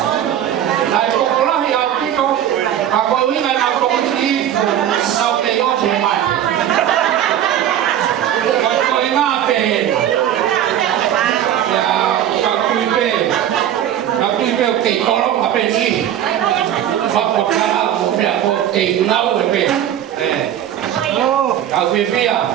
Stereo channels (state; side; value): quieter; left; 10.8 dB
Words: là có con nó hiểu tí con và có ý ngày nào con đi sau này có thể mày có ý ngã về các tùy về kỹ có lắm ở bên đi hoặc một cái là một tình lâu ở bên các quý vị à